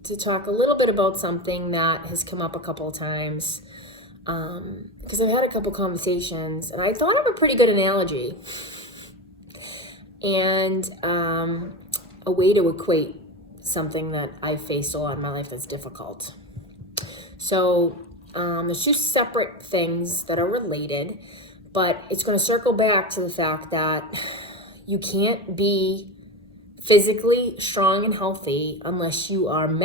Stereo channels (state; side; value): normal; both; correlation 0.22